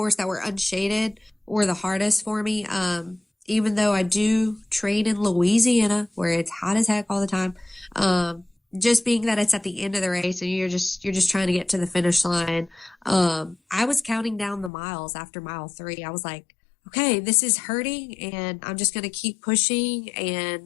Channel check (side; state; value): right; drops out; at 14.7 s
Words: that were unshaded were the hardest for me. Even though I do train in Louisiana where it's hot as heck all the time. Just being that it's at the end of the race and you're just trying to get to the finish line. I was counting down the miles after mile 3. I was like, okay, this is hurting and I'm just going to keep pushing.